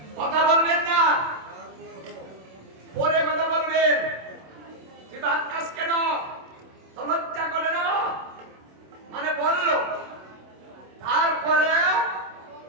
কথা বলবেন না, পরে কথা বলবেন। তুই বাদ কাজ কেন, তো লজ্জা করে না, মানে বললো, তারপরে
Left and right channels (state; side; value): late; left; 27 ms